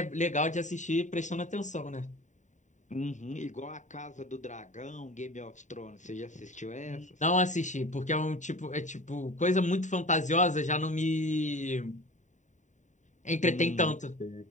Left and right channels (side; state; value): right; late; 0.35 ms